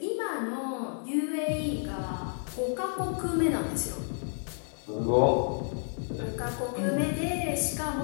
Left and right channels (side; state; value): right; silent; 56 dB below the other